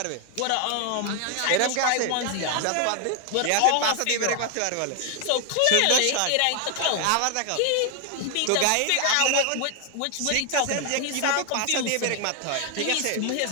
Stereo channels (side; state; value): both; different; correlation 0.01